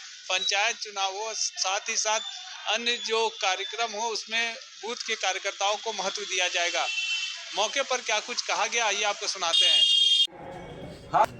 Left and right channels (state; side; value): identical; both; correlation 1.00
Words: पंचायत चुनाव हो, साथ ही साथ अन्य जो कार्यक्रम हो उसमें बूथ के कार्यकर्ताओं को महत्व दिया जाएगा। मौके पर क्या कुछ कहा गया, आइए आपको सुनाते हैं।